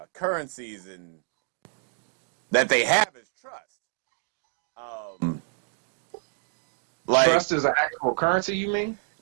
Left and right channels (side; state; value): left; silent; digital silence